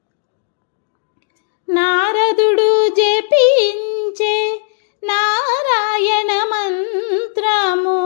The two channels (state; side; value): silent; right; digital silence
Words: నారదుడు జపించే నారాయణ మంత్రము